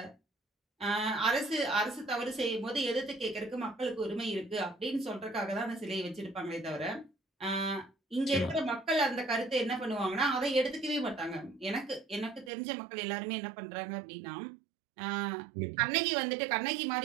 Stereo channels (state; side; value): drops out; left; at 12.5 s